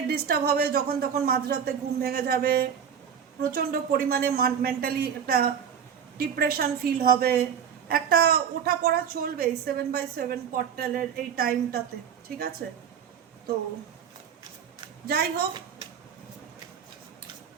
ডিস্টার্ব হবে, যখন তখন মাঝরাতে ঘুম ভেঙে যাবে, প্রচণ্ড পরিমাণে মেন্টালি একটা ডিপ্রেশন ফিল হবে, একটা ওঠা পড়া চলবে 7/7 পোর্টালের এই টাইমটাতে। ঠিক আছে, তো যাই হোক,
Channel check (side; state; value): left; quieter; 7.9 dB